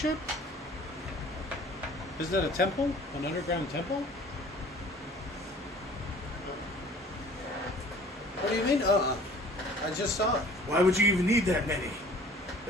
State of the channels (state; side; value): normal; both; correlation 0.50